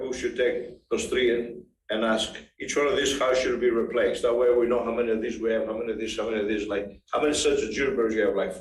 we should take those three in and ask each one of these, how should it be replaced? That way we know how many of these we have, how many of these, like, how many sets of junipers you have, like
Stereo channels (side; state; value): both; identical; correlation 1.00